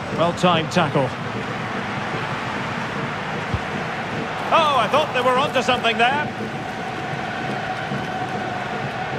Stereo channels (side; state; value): right; noise; hum, 29 dB below the sound